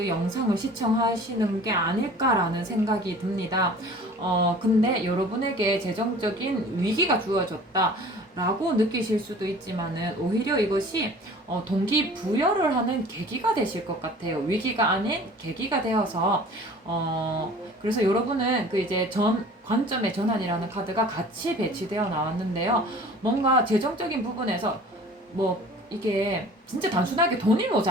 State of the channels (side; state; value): both; normal; correlation 0.46